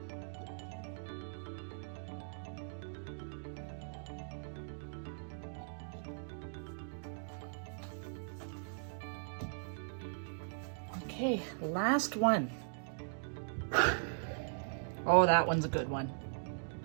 Okay, last one. Oh, that one's a good one.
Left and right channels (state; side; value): silent; left; digital silence